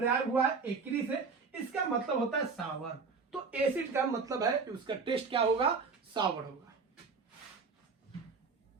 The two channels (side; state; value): left; quieter; 4.8 dB